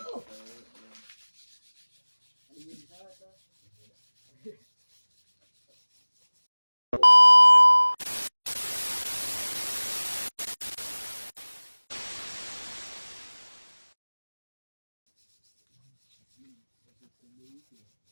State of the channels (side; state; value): both; inverted; correlation -1.00